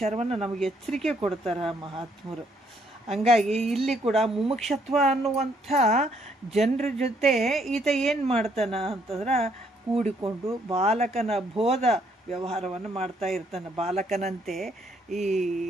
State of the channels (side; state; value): both; normal; correlation 0.69